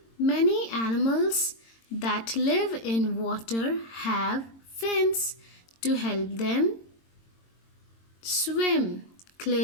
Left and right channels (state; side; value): late; right; 22 ms